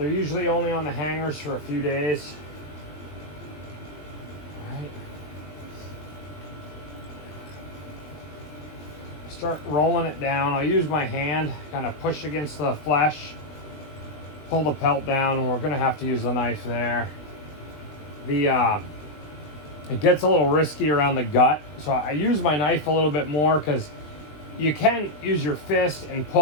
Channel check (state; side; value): late; right; 20 ms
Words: usually only on the hangers for a few days. All right. Start rolling it down. I'll use my hand, kind of push against the flesh, pull the pelt down, and we're gonna have to use the knife there. The It gets a little risky around the gut, so I use my knife a little bit more because you can use your fist and